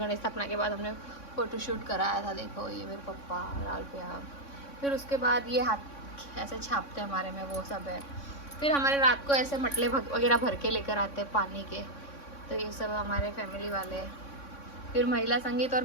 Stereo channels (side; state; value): right; late; 3.6 ms